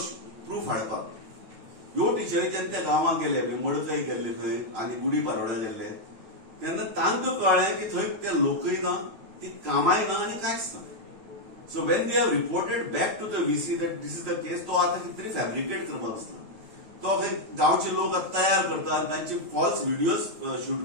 proof हाडपाक ह्यो टिचरीच्यान त्या गांवांक गेले, मडकय गेल्ले थंय आनी गुडी पारोड्या गेल्ले तेन्ना तांकां कळ्ळें की थंय ते लोकय ना, ती कामाय ना आनी कांयच ना. So when they have reported back to the VC that this is the case, तो आतां कितें तरी फॅब्रिकेट करपाक आसता. तो गांवचे लोक तयार करता आनी तांचे फॉल्स व्हिडिओज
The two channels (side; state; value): left; late; 9.1 ms